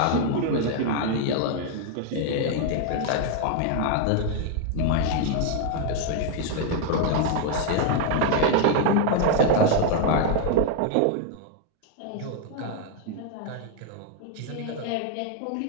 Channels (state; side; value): different; both; correlation 0.00